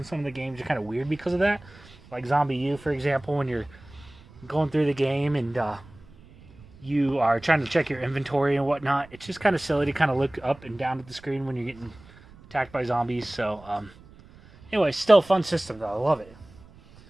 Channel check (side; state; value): right; noise; rumble, 23 dB below the sound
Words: some of the games are kind of weird because of that. Like Zombie U, for example, when you're going through the game and you are trying to check your inventory and whatnot, it's just kind of silly to kind of look up and down at the screen when you're getting attacked by zombies. So, anyway, still a fun system, though. I love it.